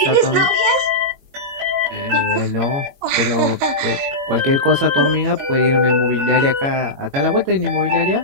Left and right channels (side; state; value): left; late; 22 ms